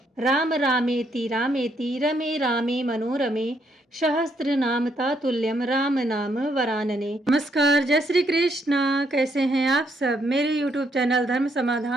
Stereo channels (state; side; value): normal; both; correlation 0.74